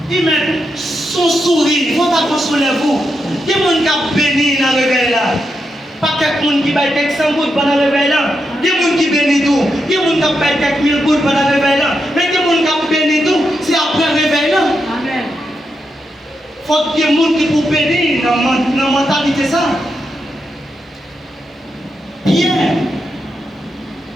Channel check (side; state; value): both; normal; correlation 0.84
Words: Il met son sourire, il faut pas consoler vous. Il y a des gens qui ont béni dans le réveil là. Pas quelqu'un qui baille quelques 100 gouttes pendant le réveil là. Il y a des gens qui bénissent tout. Il y a des gens qui baille quelques 1000 gouttes pendant le réveil là. Mais il y a des gens qui bénissent tout, c'est après le réveil là. Amen. Il faut qu'il y ait des gens qui pour bénir dans la mentalité ça. Pierre,